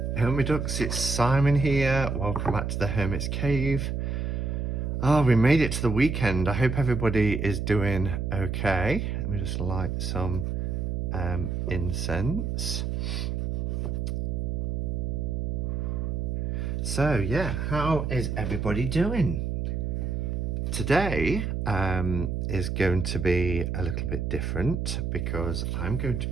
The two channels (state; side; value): noise; right; hum, 1 dB below the sound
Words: Hermit Ducks, it's Simon here. Welcome back to the Hermit's Cave. Oh, we made it to the weekend. I hope everybody is doing okay. Let me just light some incense. So yeah, how is everybody doing? Today is going to be a little bit different because I'm going to